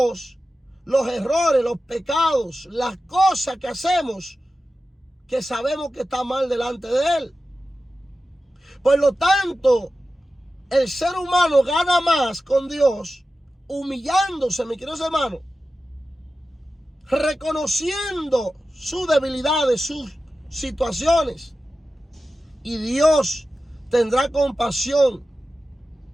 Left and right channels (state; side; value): normal; both; correlation 0.93